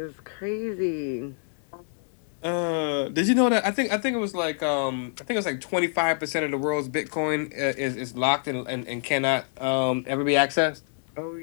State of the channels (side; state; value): right; silent; 61 dB below the other